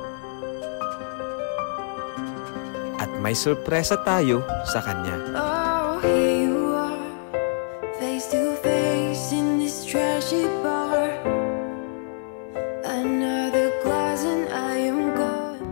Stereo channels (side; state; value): right; silent; digital silence